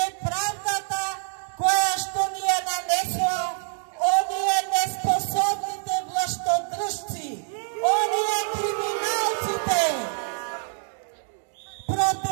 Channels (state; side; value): silent; left; digital silence